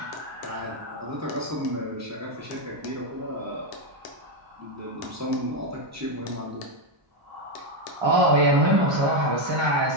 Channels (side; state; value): left; late; 1.2 ms